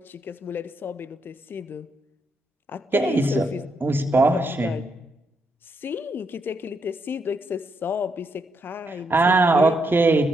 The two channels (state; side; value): normal; both; correlation 0.79